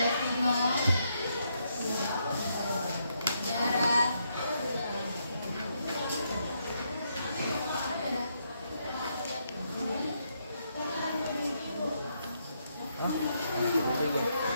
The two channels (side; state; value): both; inverted; correlation -0.77